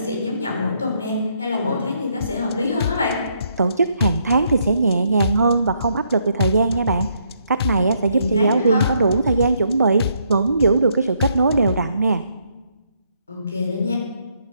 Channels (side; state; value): both; inverted; correlation -0.73